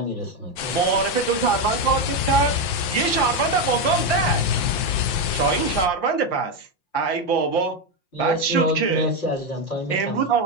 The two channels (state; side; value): late; right; 5.7 ms